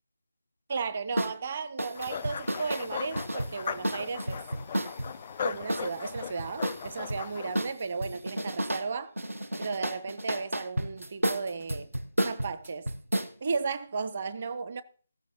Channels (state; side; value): inverted; both; correlation -0.87